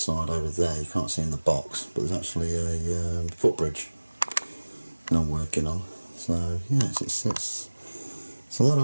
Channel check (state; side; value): inverted; both; correlation -1.00